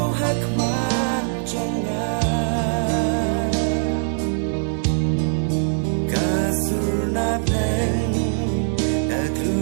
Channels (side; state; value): left; silent; 59 dB below the other